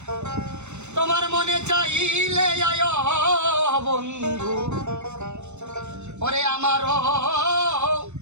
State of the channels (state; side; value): late; left; 0.83 ms